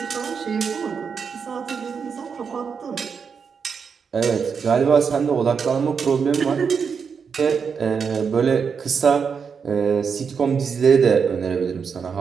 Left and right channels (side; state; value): left; quieter; 6.1 dB